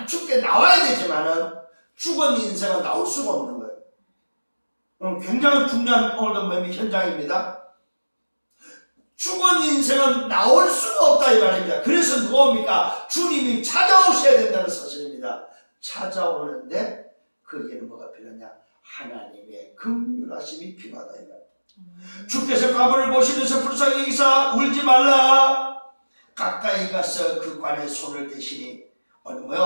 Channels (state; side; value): inverted; both; correlation -1.00